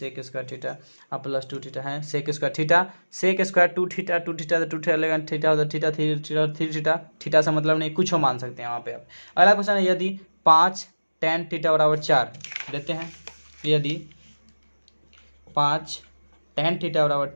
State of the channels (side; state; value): both; inverted; correlation -1.00